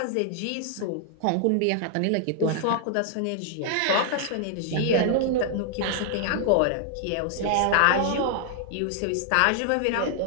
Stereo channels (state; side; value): different; both; correlation 0.00